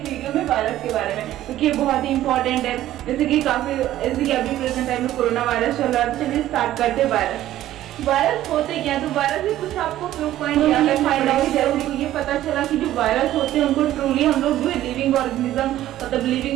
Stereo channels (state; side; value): quieter; left; 13.6 dB